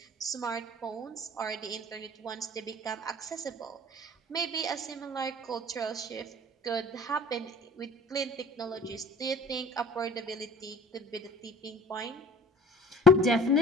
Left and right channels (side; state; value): both; normal; correlation 0.45